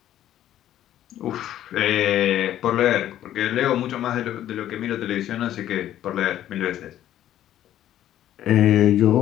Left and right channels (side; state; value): right; quieter; 12.1 dB